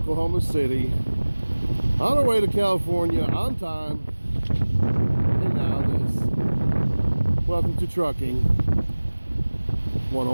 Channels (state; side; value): inverted; both; correlation -1.00